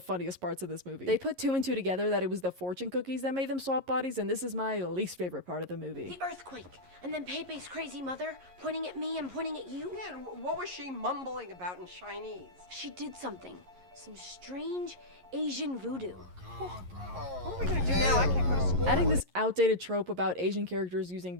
parts of this movie. They put two and two together that it was the fortune cookies that made them swap bodies, and this is my least favorite part of the movie. The earthquake. And then Pepe's crazy mother pointing at me and pointing at you. Yeah, and what was she mumbling about in Chinese? She did something. some strange Asian voodoo. What are we gonna do now? I can't go to school. Adding this outdated trope about Asian characters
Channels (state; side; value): late; left; 11 ms